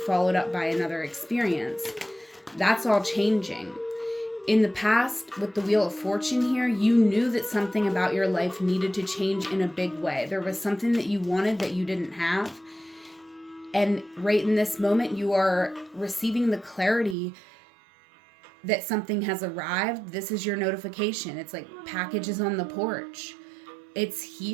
up by another experience. That's all changing. In the past, with the Wheel of Fortune here, you knew that something about your life needed to change in a big way. There was something that you wanted that you didn't have. And right in this moment, you are receiving the clarity that something has arrived. This is your notification. It's like packages on the porch. It's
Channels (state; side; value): drops out; left; at 17.2 s